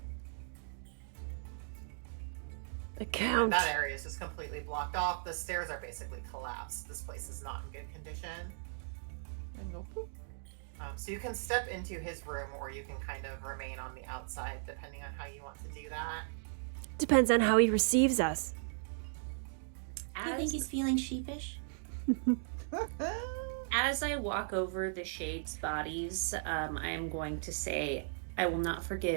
The count. That area is just completely blocked off. The stairs are basically collapsed. This place is not in good condition. And go poop. So you can step into his room, or you can kind of remain on the outside, depending on how you want to do that. Depends on how he receives us. Do you think he's feeling sheepish? As I walk over the shades' bodies, I am going to say, I will not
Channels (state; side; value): silent; left; digital silence